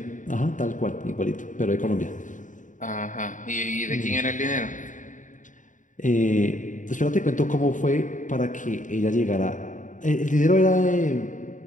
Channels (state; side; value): late; right; 0.37 ms